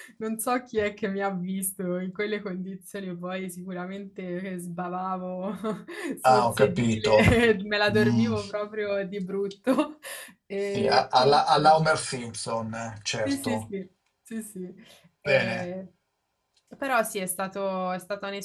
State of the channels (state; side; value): identical; both; correlation 1.00